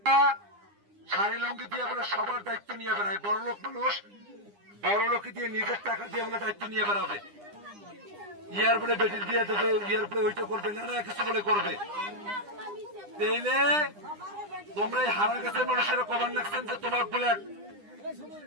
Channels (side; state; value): left; late; 9.9 ms